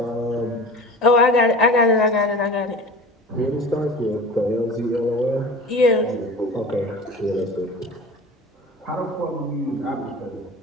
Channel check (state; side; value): normal; both; correlation 0.37